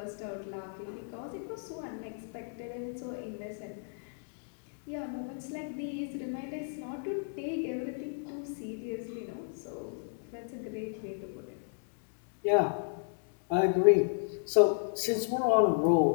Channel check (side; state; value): right; silent; digital silence